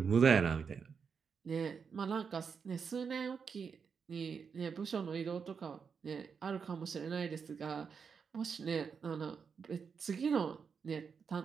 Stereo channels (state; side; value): quieter; left; 6.1 dB